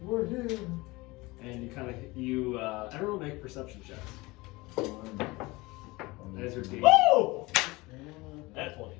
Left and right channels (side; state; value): right; quieter; 22.4 dB